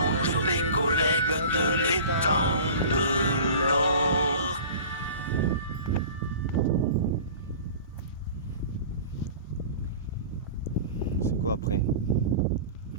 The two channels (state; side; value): inverted; both; correlation -0.40